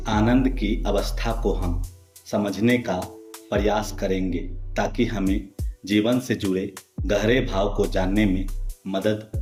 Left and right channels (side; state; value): both; identical; correlation 1.00